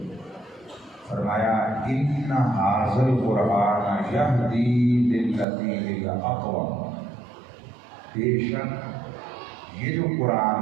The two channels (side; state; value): left; drops out; at 5.5 s